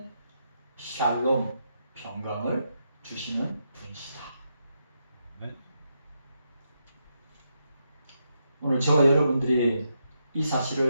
샬롬, 평강을 주시는 분이시다. 네. 오늘 저와 여러분들이 이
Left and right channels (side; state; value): both; inverted; correlation -0.82